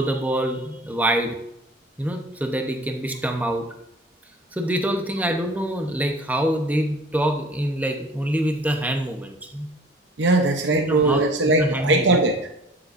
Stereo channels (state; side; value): normal; both; correlation 0.47